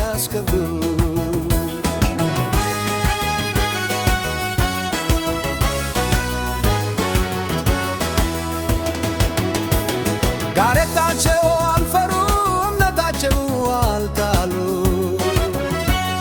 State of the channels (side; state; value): both; identical; correlation 1.00